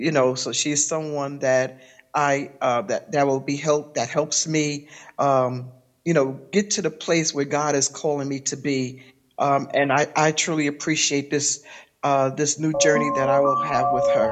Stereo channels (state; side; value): identical; both; correlation 1.00